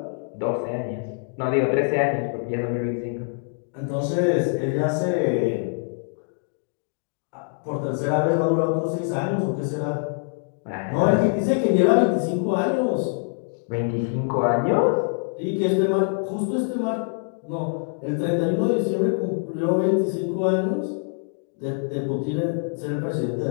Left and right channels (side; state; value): right; silent; 58 dB below the other